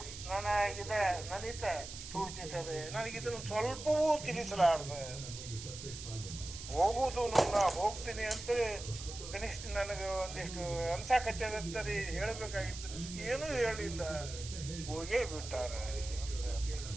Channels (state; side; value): noise; right; hiss, 10 dB below the sound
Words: ನನಿತ ಸೂಚಿಸದೆ ನನಗಿದನ್ನು ಸ್ವಲ್ಪವೂ ತಿಳಿಸಲಾರದೆ. ಹೋಗುವುದು ನಾ ಹೋಗ್ತೀನಿ ಅಂತೇಳಿ ಕನಿಷ್ಠ ನನಗೆ ಒಂದಿಷ್ಟು ಅನ್ಸಾಕಚ್ಚದಂತರಿ ಹೇಳಬೇಕಾಗಿತ್ತು. ಏನೂ ಹೇಳಿಲ್ಲ, ಹೋಗೇ ಬಿಟ್ಟಾರೆ.